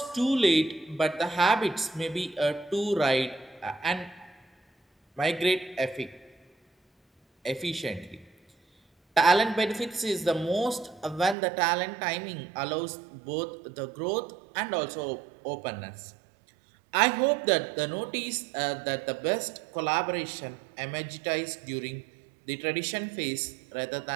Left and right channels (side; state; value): left; drops out; at 11.4 s